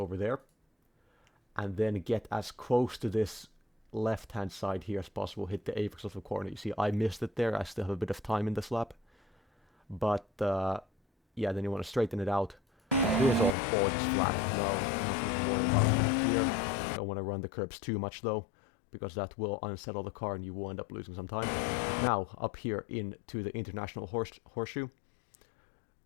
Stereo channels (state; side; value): drops out; right; at 13.6 s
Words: there, and then get as close to this left-hand side here as possible, hit the apex of the corner. You see, I missed it there. I still have a bit of time in this lap. But, yeah, then you want to straighten it out. Here's all just flat. No, nothing to worry about here. Don't want to run the curbs too much, though, because that will unsettle the car and you will end up losing some time. Now, up here into the International Horseshoe,